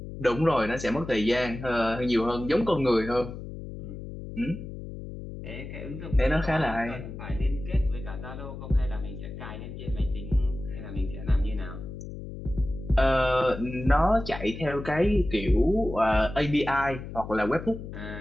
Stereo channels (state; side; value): noise; left; hum, 10 dB below the sound